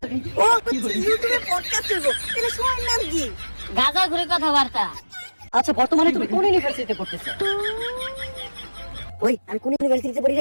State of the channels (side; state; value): both; inverted; correlation -1.00